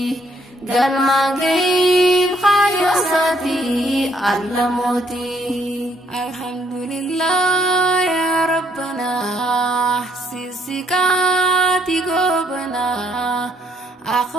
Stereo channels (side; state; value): both; normal; correlation 0.69